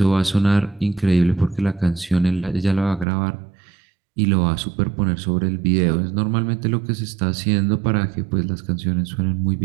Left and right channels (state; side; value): drops out; left; at 3.1 s